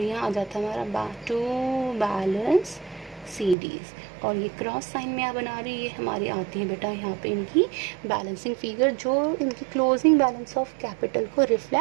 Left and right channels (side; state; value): left; drops out; at 3.6 s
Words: यहाँ आ जाता है हमारा टू बैलेंस CDs, और ये क्रॉस साइन में आप बना रही, ये हमारी आती है बेटा यहाँ पे इनकी बैलेंसिंग फिगर, जो इनकी क्लोजिंग बैलेंस ऑफ कैपिटल को